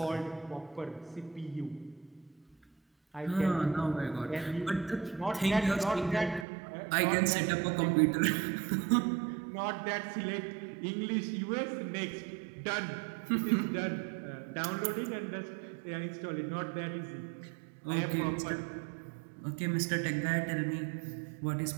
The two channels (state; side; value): drops out; left; at 6.5 s